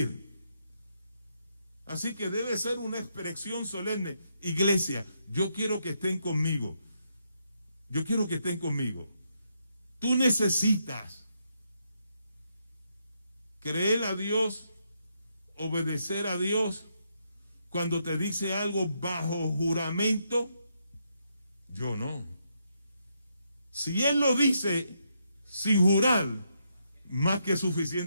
Así que debe ser una expresión solemne. Iglesia, yo quiero que estén conmigo. Yo quiero que estén conmigo. Tú necesitas creer a Dios, obedecer a Dios. Cuando te dice algo bajo juramento, yo no. Si Él lo dice sin jurar, más que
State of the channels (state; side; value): inverted; both; correlation -0.79